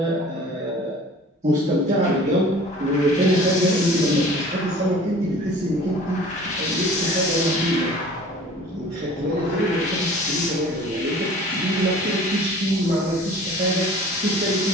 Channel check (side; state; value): both; normal; correlation 0.46